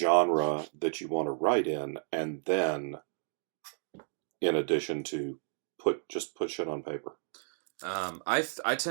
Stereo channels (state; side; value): silent; left; digital silence